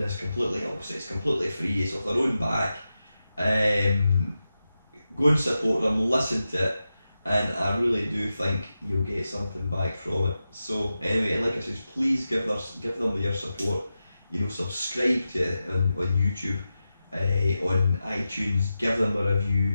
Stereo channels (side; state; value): both; inverted; correlation -0.92